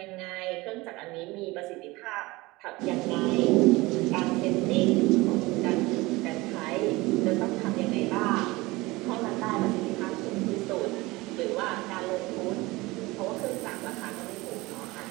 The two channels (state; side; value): quieter; left; 21.6 dB